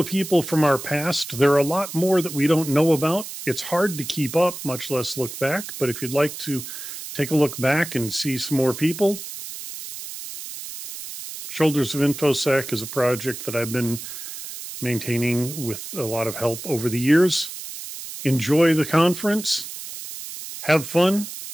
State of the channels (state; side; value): noise; right; hiss, 10 dB below the sound